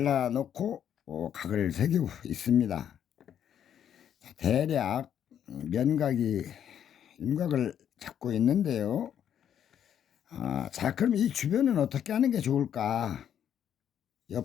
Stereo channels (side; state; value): right; quieter; 9.4 dB